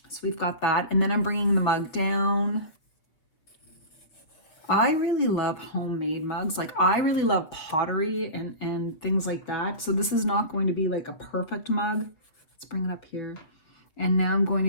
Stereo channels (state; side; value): late; right; 6.2 ms